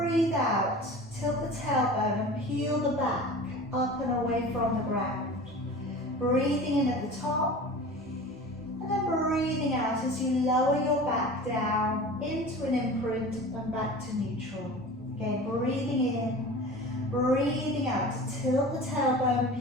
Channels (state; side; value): normal; both; correlation 0.37